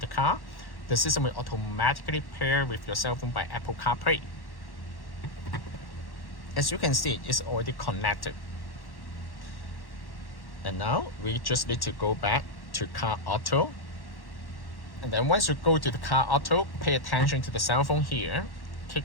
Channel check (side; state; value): right; late; 1.1 ms